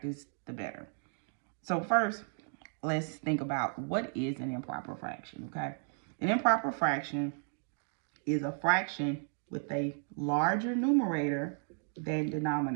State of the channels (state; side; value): silent; left; 55 dB below the other